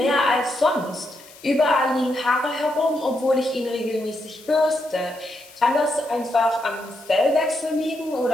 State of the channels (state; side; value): noise; left; hiss, 22 dB below the sound